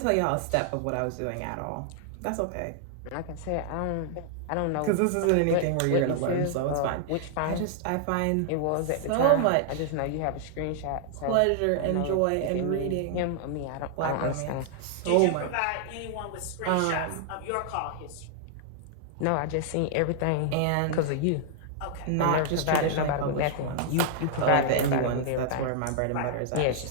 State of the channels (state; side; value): different; both; correlation 0.00